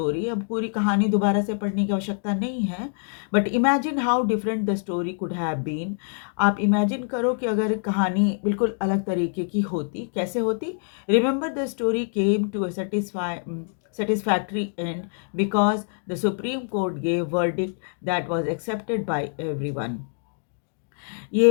अब पूरी कहानी दोबारा से पढ़ने की आवश्यकता नहीं है, but imagine how different the story could have been. आप इमेजिन करो कि अगर कहानी बिल्कुल अलग तरीके की होती, कैसे होती। Remember the story came to a satisfactory end because the Supreme Court gave verdict that was accepted by everyone.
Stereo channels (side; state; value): right; silent; 62 dB below the other